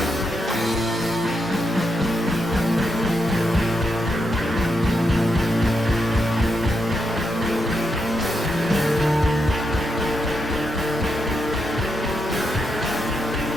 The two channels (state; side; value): normal; both; correlation 0.83